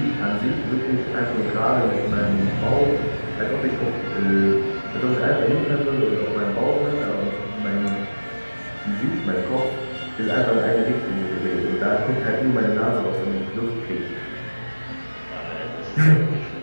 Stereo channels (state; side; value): inverted; both; correlation -1.00